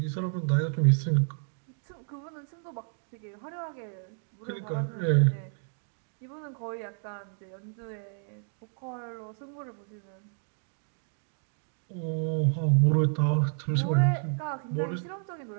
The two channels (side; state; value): left; silent; 57 dB below the other